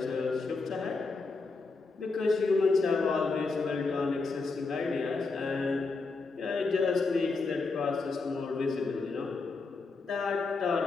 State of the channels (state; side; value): quieter; right; 4.0 dB